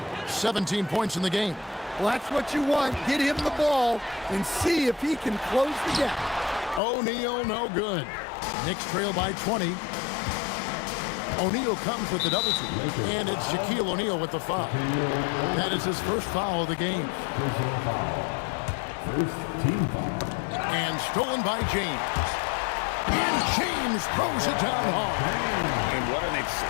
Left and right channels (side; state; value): right; drops out; at 6.8 s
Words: 17 points in the game. Well, that's what you want. Get him the ball and see if he can close the gap. O'Neal, no good. Knicks trail by 20. O'Neal comes with the double team. And it's Shaquille O'Neal with the foul. That is his first foul of the game. And stolen by James. And James throws it down hard. And what an